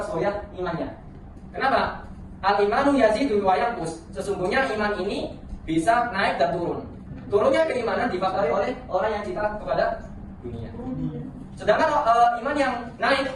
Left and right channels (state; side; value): identical; both; correlation 1.00